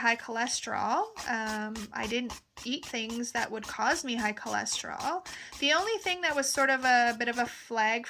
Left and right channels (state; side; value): identical; both; correlation 1.00